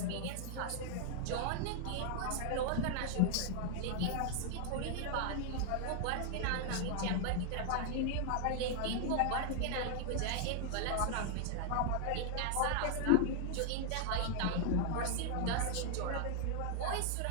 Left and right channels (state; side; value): different; both; correlation 0.00